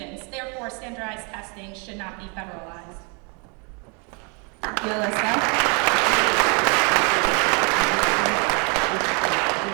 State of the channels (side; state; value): left; quieter; 34.7 dB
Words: Therefore, standardized testing should not be federalized. Thank you, Alyssa.